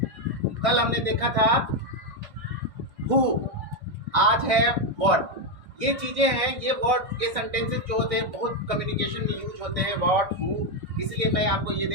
कल हमने देखा था हु, आज है व्हाट। ये चीजें हैं, ये वर्ड, ये सेंटेंसेस जो होते हैं बहुत कम्युनिकेशन में यूज होते हैं, व्हाट, हु। इसलिए मैं आपको ये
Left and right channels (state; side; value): late; left; 1.6 ms